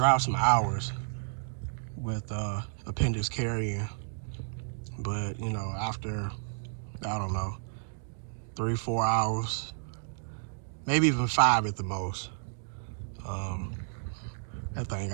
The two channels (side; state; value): left; silent; digital silence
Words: some hours with appendix carrying, but you know, after, I don't know, 3-4 hours, maybe even 5 at the most, that thing